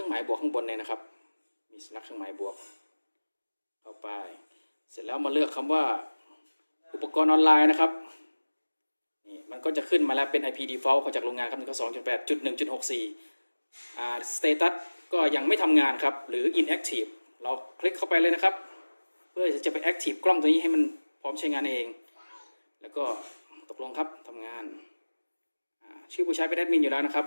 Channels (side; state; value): both; inverted; correlation -1.00